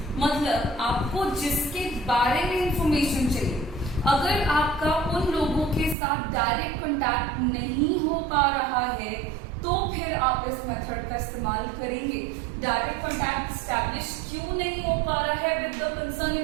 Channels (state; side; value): drops out; left; at 6.0 s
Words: मतलब आपको जिसके बारे में इंफॉर्मेशन चाहिए, अगर आपका उन लोगों के साथ डायरेक्ट कांटेक्ट नहीं हो पा रहा है तो फिर आप इस मेथड का इस्तेमाल करेंगे। डायरेक्ट कांटेक्ट एस्टैब्लिश क्यों नहीं हो पा रहा है विद द कंसर्न